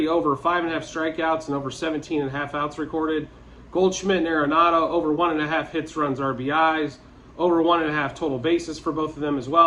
over 5.5 strikeouts and over 17.5 outs recorded. Goldschmidt and Arenado over 1.5 hits, runs, RBIs. Over 1.5 total bases for both of them as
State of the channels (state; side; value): identical; both; correlation 1.00